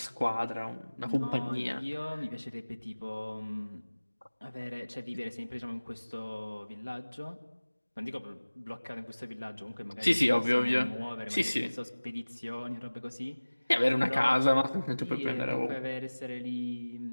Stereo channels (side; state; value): both; inverted; correlation -1.00